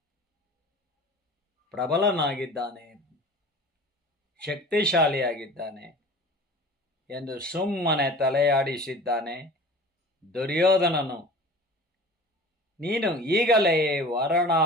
ಪ್ರಬಲನಾಗಿದ್ದಾನೆ, ಶಕ್ತಿಶಾಲಿಯಾಗಿದ್ದಾನೆ ಎಂದು ಸುಮ್ಮನೆ ತಲೆಯಾಡಿಸಿದ್ದಾನೆ ದುರ್ಯೋಧನನು. ನೀನು ಈಗಲೇ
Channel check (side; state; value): both; normal; correlation 0.40